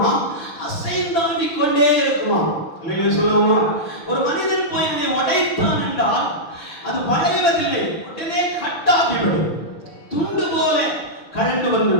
அசைந்தாடி கொண்டே இருக்குமா? அல்லேலூயா சொல்லலாமா? ஒரு மனிதன் போய் அதை உடைத்தான் என்றால் அது வளைவதில்லை, உடனே கட்டாகிவிடும், துண்டு போல கழண்டு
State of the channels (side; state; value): right; late; 6.0 ms